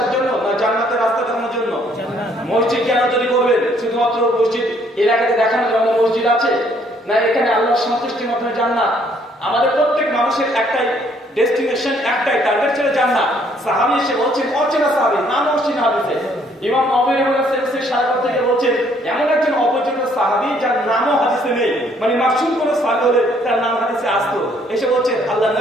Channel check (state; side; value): normal; both; correlation 0.65